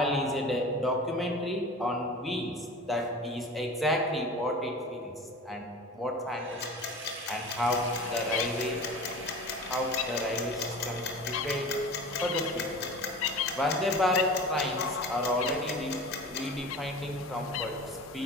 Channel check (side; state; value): both; normal; correlation 0.36